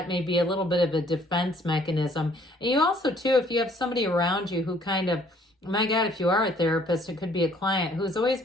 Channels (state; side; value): normal; both; correlation 0.61